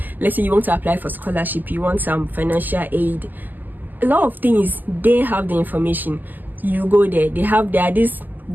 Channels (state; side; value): late; left; 0.086 ms